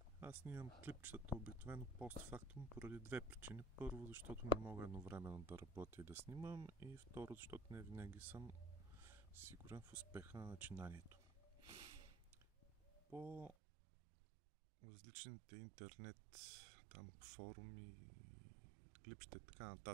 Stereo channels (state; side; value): drops out; left; at 13.6 s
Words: Аз снимам клипчетата обикновено постфактум поради две причини. Първо, защото не мога едновременно да работя и да снимам, и второ, защото не винаги съм сигурен в успеха на начинанието. По различните интернет форуми, клипчета и така